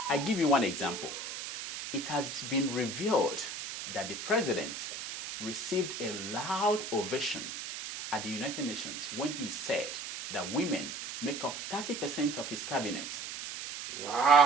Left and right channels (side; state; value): right; noise; hiss, 7 dB below the sound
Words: I give you one example. It has been revealed that the president received a loud ovation at the United Nations when he said that women make up 30% of his cabinet.